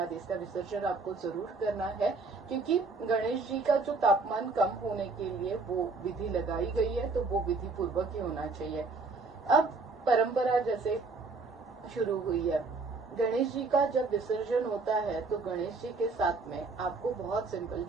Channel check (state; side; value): quieter; left; 3.9 dB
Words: इसका विसर्जन आपको जरूर करना है, क्योंकि गणेश जी का जो तापमान कम होने के लिए वो विधि लगाई गई है, तो वो विधि पूर्वक ही होना चाहिए। अब परंपरा जैसे शुरू हुई है, गणेश जी का जब विसर्जन होता है तो गणेश जी के साथ में आपको बहुत सिंपल,